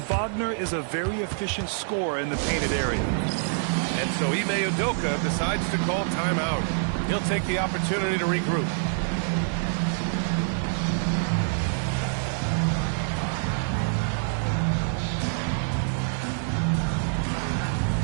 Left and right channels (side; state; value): left; silent; digital silence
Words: Wagner is a very efficient scorer in the painted area. And so Ime Udoka decides to call timeout. He'll take the opportunity to regroup.